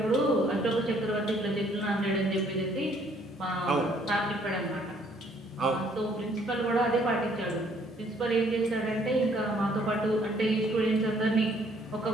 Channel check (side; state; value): both; normal; correlation 0.63